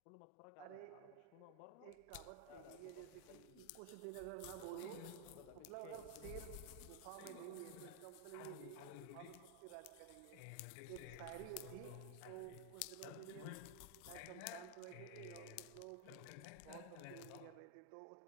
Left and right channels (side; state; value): both; different; correlation 0.00